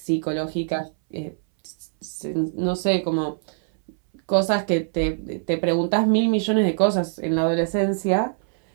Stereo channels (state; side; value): silent; left; 63 dB below the other